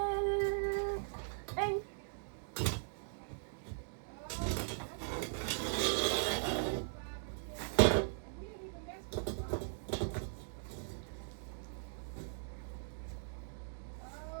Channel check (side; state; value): left; silent; digital silence